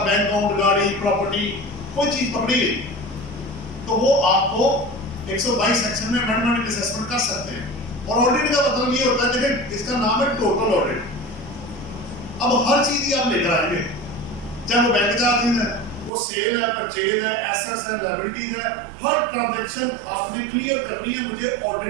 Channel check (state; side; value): drops out; left; at 16.1 s